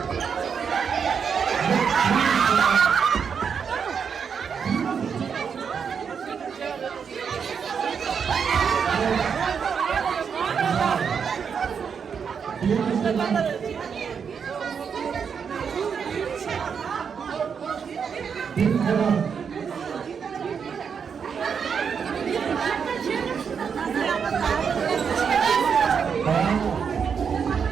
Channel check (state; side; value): quieter; left; 6.6 dB